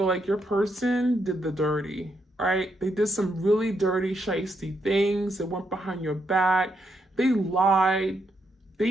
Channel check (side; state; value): both; normal; correlation 0.79